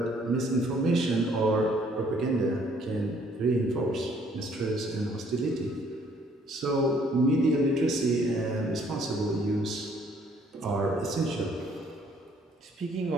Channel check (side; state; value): both; normal; correlation 0.63